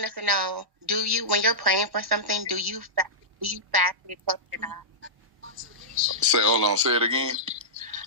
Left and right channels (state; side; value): late; left; 1.0 ms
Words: to know, when you're praying for something, do you fast to get close to God? Say it again.